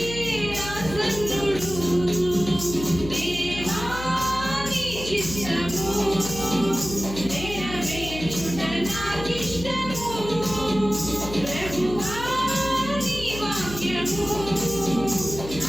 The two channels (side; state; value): left; noise; hum, 11 dB below the sound